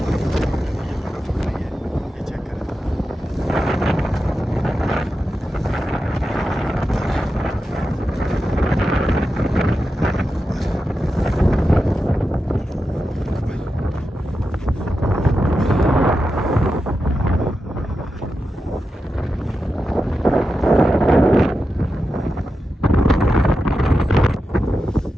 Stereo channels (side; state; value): both; normal; correlation 0.90